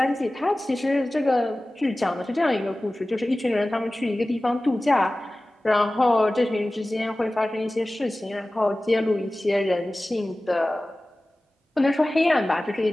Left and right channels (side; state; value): both; normal; correlation 0.97